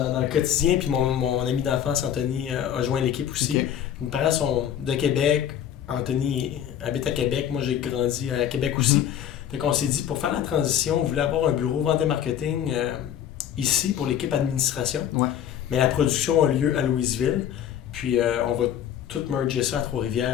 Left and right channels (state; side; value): quieter; right; 10.0 dB